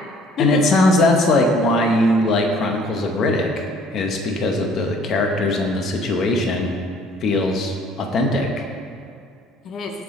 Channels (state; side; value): normal; both; correlation 0.57